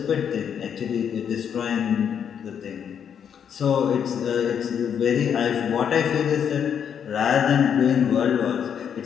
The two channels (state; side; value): quieter; right; 8.1 dB